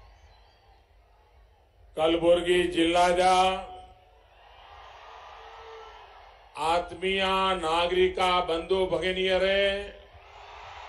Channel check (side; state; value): both; identical; correlation 1.00